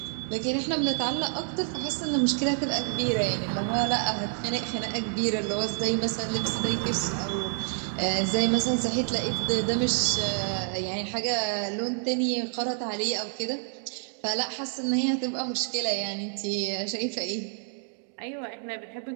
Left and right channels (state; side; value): silent; left; 59 dB below the other